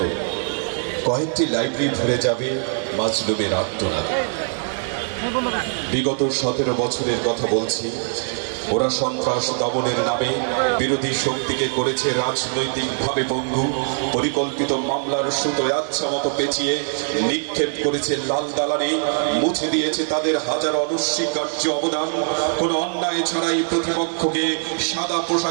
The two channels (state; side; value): silent; left; 59 dB below the other